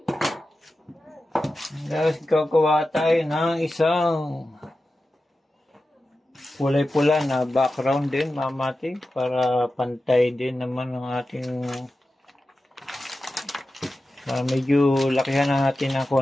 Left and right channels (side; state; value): both; normal; correlation 0.93